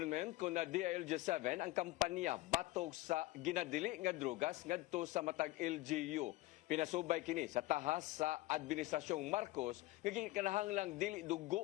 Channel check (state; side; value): quieter; right; 18.4 dB